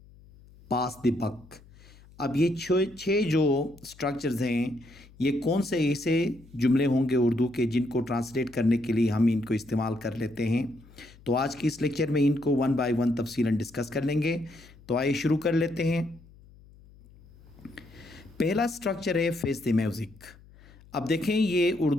pass the buck. अब ये छः जो स्ट्रक्चर्स हैं, ये कौन से ऐसे जुमले होंगे उर्दू के जिनको ट्रांसलेट करने के लिए हम इनको इस्तेमाल कर लेते हैं। तो आज की इस लेक्चर में इनको वन बाय वन तफसीलन डिस्कस कर लेंगे। तो आइए शुरू कर लेते हैं। पहला स्ट्रक्चर है फेस द म्यूज़िक। अब देखें, ये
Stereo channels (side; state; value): left; noise; hum, 24 dB below the sound